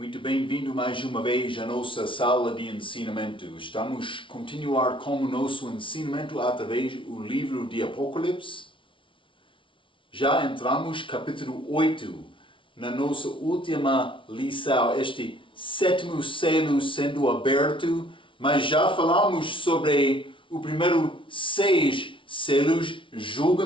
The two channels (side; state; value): right; late; 0.25 ms